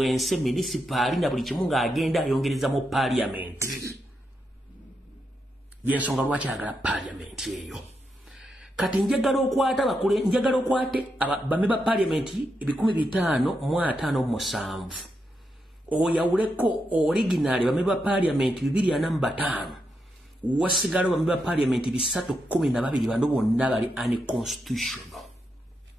municipal na buli kimu ng'agenda ayongereza mu Parliament. Yensonga lwaki ayagala Parliament eyo. Kati njagala okwate bameba Parliament 1557 oyawuleko original bameba Parliament 245 wasigala bameba Parliament 312 bano bonna bali unconstitutional.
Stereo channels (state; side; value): normal; both; correlation 0.84